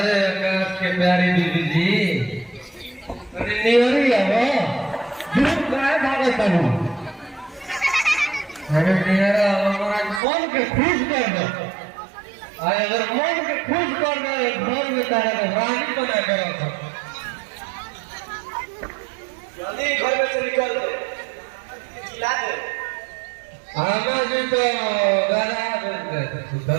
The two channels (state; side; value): drops out; left; at 10.2 s